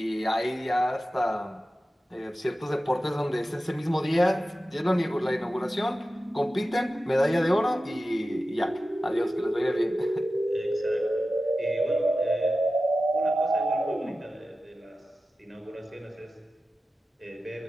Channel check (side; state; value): both; normal; correlation 0.94